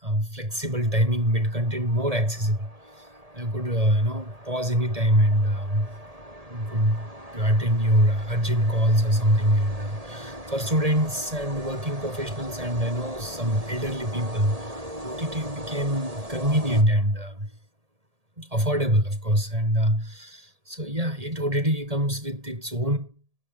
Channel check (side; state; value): left; late; 1.7 ms